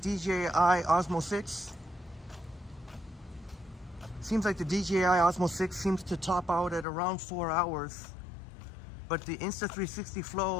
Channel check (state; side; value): drops out; right; at 6.9 s